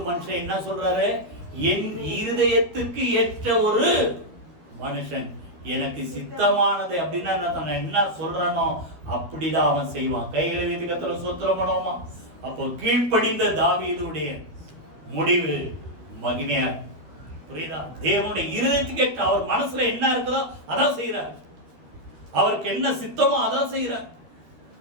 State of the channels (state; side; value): late; left; 12 ms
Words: மனுஷன் என்ன சொல்றாரு? என் இருதயத்துக்கு ஏற்ற ஒரு மனுஷன், எனக்கு சித்தமானது அப்படின்னா என்ன சொல்றானோ அப்படிதான் அவன் செய்வான். கைகளை வீட்டு கத்திர சோத்திரம் பண்ணுவோமா? அப்போ கீழ்ப்படிந்த தாவீதுடைய முடிவு மகிமையா. புரியுதா? தேவனுடைய இருதயத்துக்கு ஏற்ற, அவர் மனசுல என்ன இருக்குதோ அதான் செய்யறார். அவருக்கு என்ன சித்தமோ அதான் செய்யறார்.